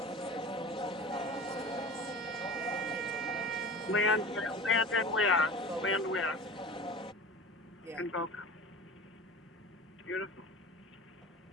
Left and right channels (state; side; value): normal; both; correlation 0.36